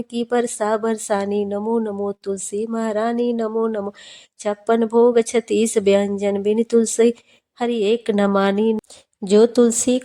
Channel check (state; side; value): identical; both; correlation 1.00